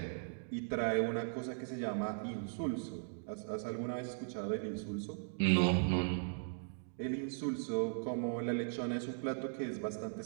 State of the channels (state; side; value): silent; left; digital silence